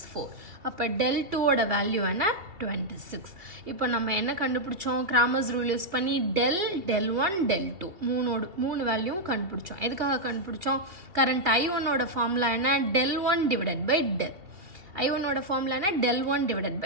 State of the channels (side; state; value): left; late; 2.6 ms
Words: 4. அப்போ del 2ஓட வேல்யூ என்ன? 26. இப்போ நம்ம என்ன கண்டுபிடிச்சோம்? கிராமர்ஸ் ரூல் யூஸ் பண்ணி del 1 del 2 மூணு வேல்யூவும் கண்டுபிடிச்சோம். எதுக்காக கண்டுபிடிச்சோம்? கரண்ட் I1ஓட ஃபார்முலா என்ன? del 1 / del. I1ஓட ஃபார்முலா என்ன? del 1 /